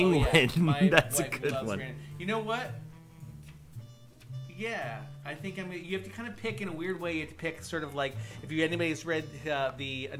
That's a good one. You know what? Yeah, I think you have to kind of pick in a weird way. You have to pick sort of like if anybody's read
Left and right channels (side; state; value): both; identical; correlation 1.00